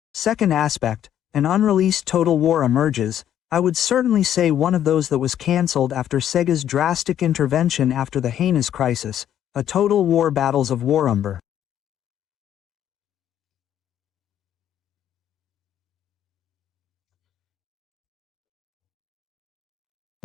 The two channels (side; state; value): right; quieter; 10.5 dB